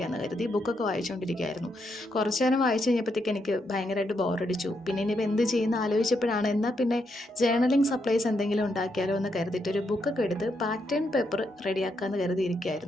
കരുതി. ബുക്കൊക്കെ വായിച്ചുകൊണ്ടിരിക്കുകയായിരുന്നു. കുറച്ച് നേരം വായിച്ചു കഴിഞ്ഞപ്പോഴത്തേക്ക് എനിക്ക് ഭയങ്കരമായിട്ട് ബോറടിച്ചു. പിന്നെ ഇനിയിപ്പോൾ എന്ത് ചെയ്യുന്ന ആലോചിച്ചപ്പോഴാണ് എന്നാൽ പിന്നെ ജേർണലിംഗ് സപ്ലൈസ് എന്തെങ്കിലും ഉണ്ടാക്കിയാലോ എന്ന് കരുതിയിട്ട് ഒരു ബുക്കൊക്കെ എടുത്ത് പാറ്റേൺ പേപ്പർ റെഡിയാക്കാമെന്ന്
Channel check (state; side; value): normal; both; correlation 0.79